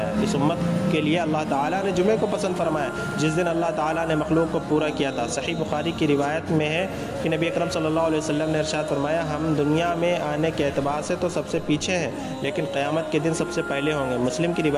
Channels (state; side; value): identical; both; correlation 1.00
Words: اس امت کے لیے اللہ تعالیٰ نے جمعے کو پسند فرمایا جس دن اللہ تعالیٰ نے مخلوق کو پورا کیا تھا۔ صحیح بخاری کی روایت میں ہے کہ نبی اکرم صلی اللہ علیہ وسلم نے ارشاد فرمایا، ہم دنیا میں آنے کے اعتبار سے تو سب سے پیچھے ہیں لیکن قیامت کے دن سب سے پہلے ہوں گے۔ مسلم کی